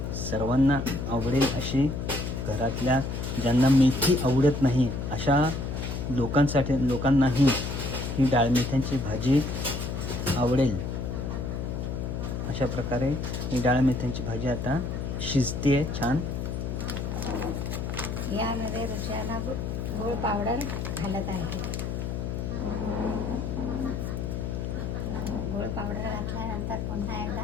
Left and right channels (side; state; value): left; noise; hum, 3 dB below the sound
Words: सर्वांना आवडेल अशी, घरातल्या ज्यांना मेथी आवडत नाही अशा लोकांनाही ही डाळ मेथ्यांची भाजी आवडेल. अशा प्रकारे ही डाळ मेथ्यांची भाजी आता शिजते छान. यामध्ये रुचना गूळ पावडर घालत आहे. गूळ पावडर घातल्यानंतर पुन्हा एकदा